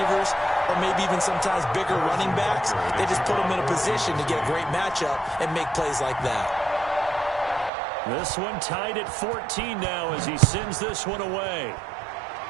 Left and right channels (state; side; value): drops out; left; at 7.7 s